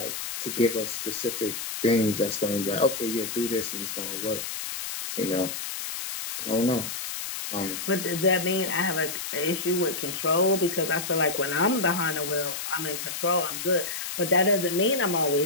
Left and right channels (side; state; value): left; noise; hiss, 5 dB below the sound